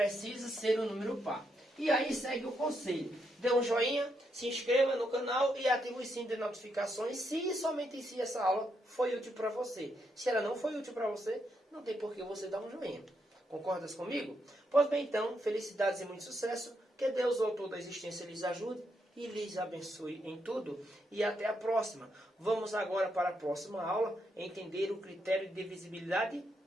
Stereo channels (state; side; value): normal; both; correlation 0.79